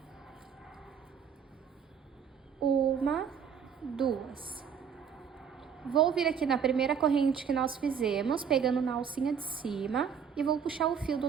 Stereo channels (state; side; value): quieter; left; 7.3 dB